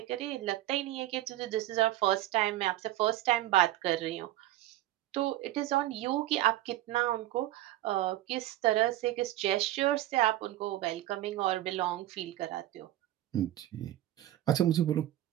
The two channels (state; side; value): quieter; left; 14.6 dB